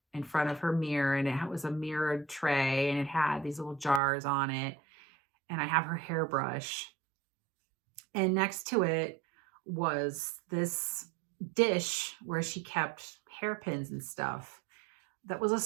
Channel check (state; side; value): drops out; left; at 4.0 s